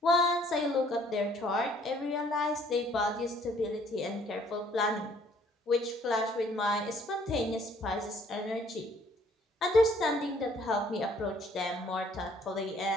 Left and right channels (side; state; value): both; normal; correlation 0.61